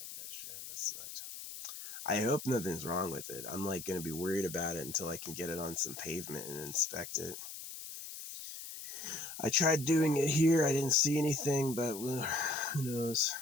that shit. That sucked. I hope nothing's wrong with it. I'm like going to be worried about it until I can get it on some pavement and inspect it. I tried doing it here. I didn't see anything, but who knows?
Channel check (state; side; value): noise; left; hiss, 10 dB below the sound